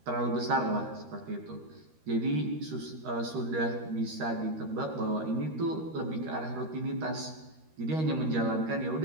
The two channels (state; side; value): late; left; 13 ms